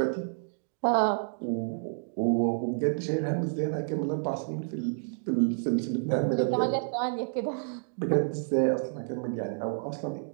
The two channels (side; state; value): left; silent; digital silence